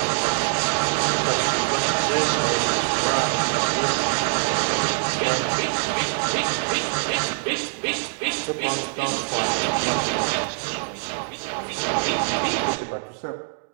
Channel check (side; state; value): left; silent; digital silence